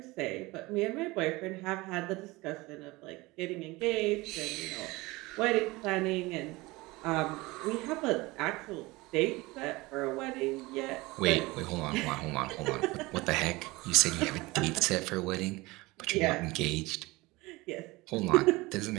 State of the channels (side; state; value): left; quieter; 21.9 dB